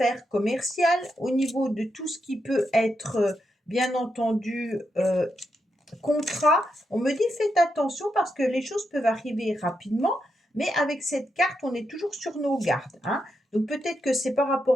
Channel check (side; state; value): both; normal; correlation 0.84